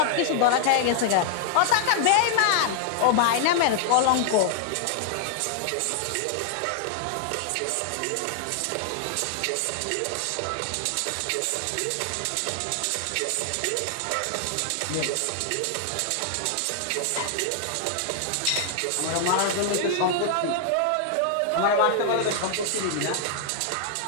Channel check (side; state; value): both; different; correlation -0.01